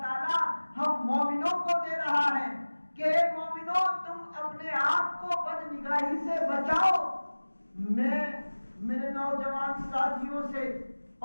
تعالی ہم مومنوں کو دے رہا ہے کہ مومنوں تم اپنے آپ کو بد نگاہی سے بچاؤ۔ میں میرے نوجوان ساتھیوں سے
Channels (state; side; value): inverted; both; correlation -1.00